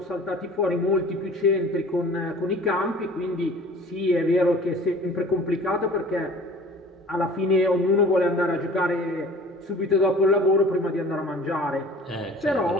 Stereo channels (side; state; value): both; normal; correlation 0.46